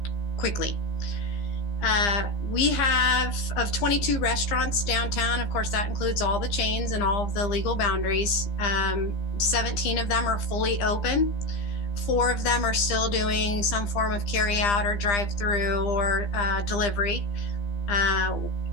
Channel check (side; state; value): right; late; 15 ms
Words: quickly. We have, of 22 restaurants downtown, of course, that includes all the chains and all of the legal boundaries. 17 of them are fully open. 4 of them are still doing some form of carry out or drive through or delivery.